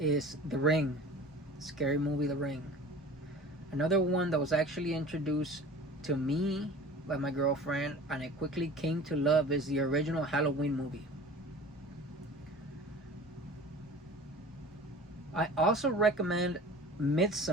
The Ring. Scary movie The Ring. Another one that was actually introduced to me by my girlfriend and I quickly came to love is the original Halloween movie. I also recommend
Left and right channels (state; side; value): normal; both; correlation 0.41